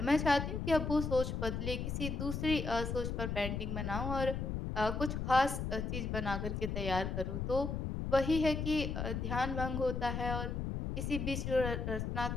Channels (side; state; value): left; noise; rumble, 2 dB below the sound